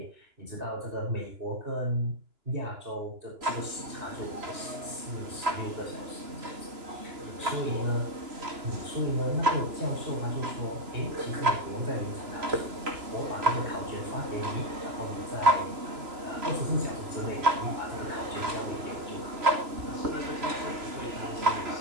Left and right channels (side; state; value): left; late; 3.0 ms